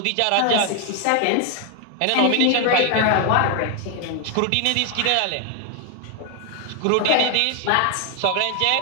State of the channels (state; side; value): different; both; correlation 0.01